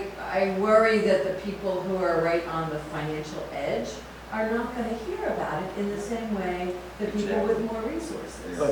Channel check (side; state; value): both; identical; correlation 1.00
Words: worry that the people who are right on the financial edge are not gonna hear about it in the same way that people with more resources.